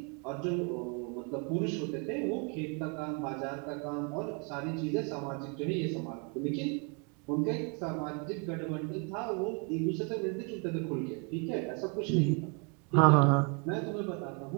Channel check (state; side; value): quieter; left; 35.6 dB